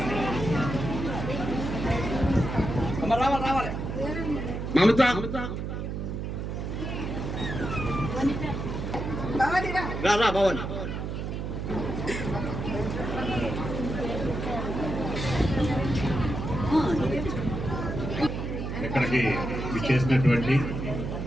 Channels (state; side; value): noise; right; hum, 4 dB below the sound